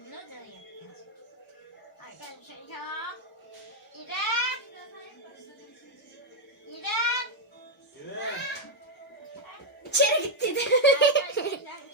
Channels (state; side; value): normal; both; correlation 0.00